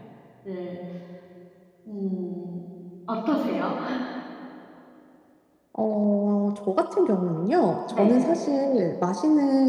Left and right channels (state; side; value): identical; both; correlation 1.00